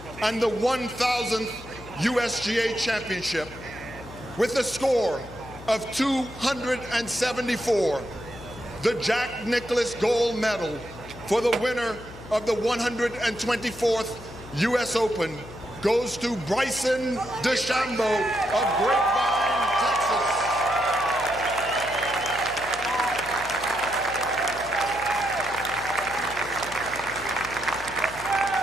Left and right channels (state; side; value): noise; left; hum, 16 dB below the sound